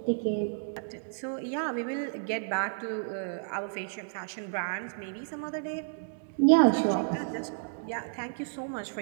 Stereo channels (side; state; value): left; silent; digital silence